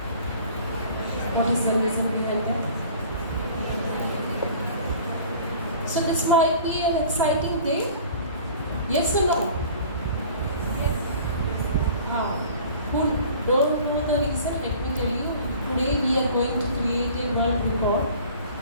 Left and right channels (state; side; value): inverted; both; correlation -0.46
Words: What is the reason behind that? So this might be an exciting day. Yes or no? Who don't know the reason? Let me tell you. Today we are going to create a world record.